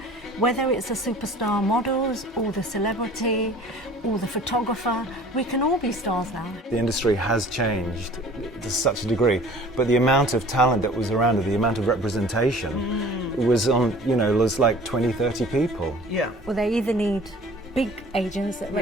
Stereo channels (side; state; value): both; normal; correlation 0.47